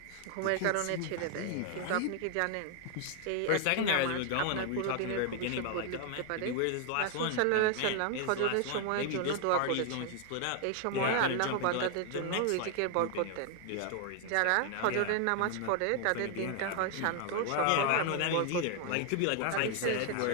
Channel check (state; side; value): different; both; correlation 0.00